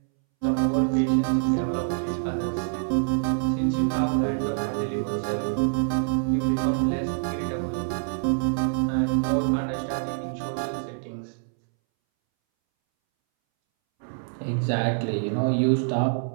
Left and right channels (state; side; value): silent; left; 61 dB below the other